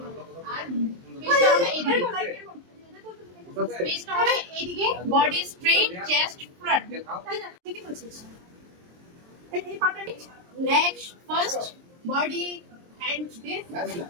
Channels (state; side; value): late; left; 23 ms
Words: আর পেছটা হবে এইদিকে, পেছটা হবে এইদিকে, বডি স্ট্রেট, চেস্ট ফ্রন্ট। ঠিকই বলছিস। এই পার্টটা নিচ, next first body hands this.